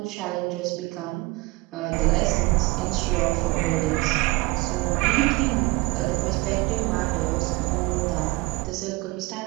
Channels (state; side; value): quieter; left; 23.1 dB